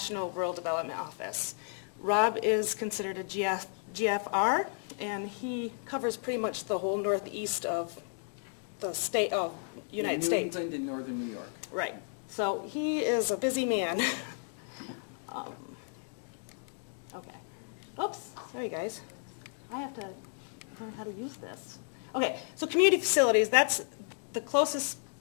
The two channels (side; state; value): right; silent; 56 dB below the other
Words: Rural Development Office. Rob is considered a GFR, and he covers pretty much the whole northeast of the state of United States. New England and northern New York. Right. So he is a busy man. Okay. Oops, sorry guys. I have to learn how to use this. Okay, so community facilities, that's the closest